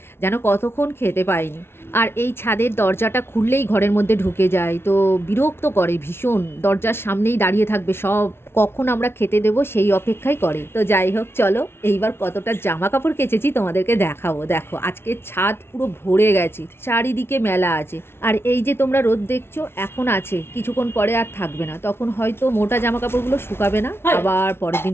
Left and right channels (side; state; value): right; late; 0.12 ms